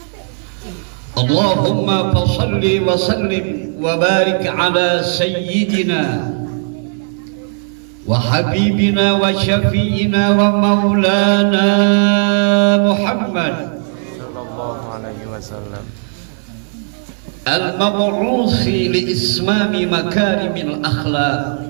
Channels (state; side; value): silent; left; 63 dB below the other